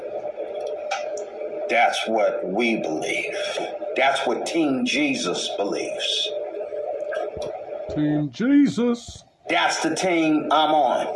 That's what we believe. That's what Team Jesus believes. Team Jesus. That's the team I'm on.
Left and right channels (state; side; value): identical; both; correlation 1.00